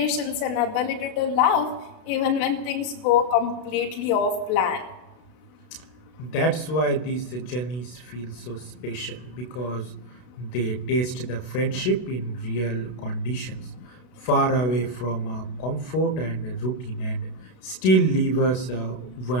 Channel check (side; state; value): right; late; 32 ms